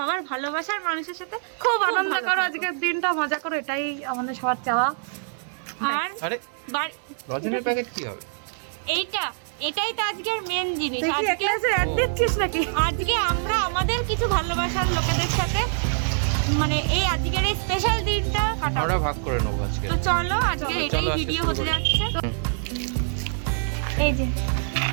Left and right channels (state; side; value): silent; left; 62 dB below the other